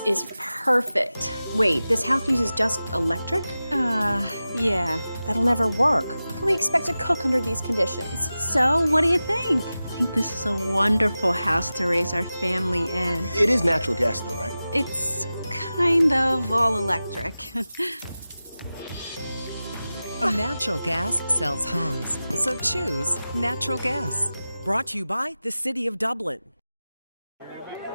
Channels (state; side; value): inverted; both; correlation -0.95